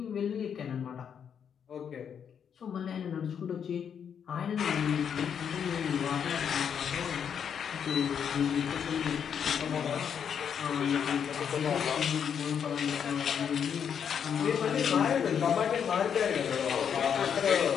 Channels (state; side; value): quieter; right; 7.8 dB